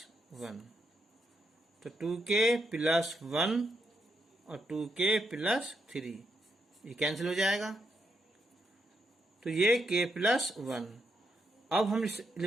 1, तो 2k प्लस 1 और 2k प्लस 3 ये कैंसिल हो जाएगा, तो ये k प्लस 1। अब हम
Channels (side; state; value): both; normal; correlation 0.81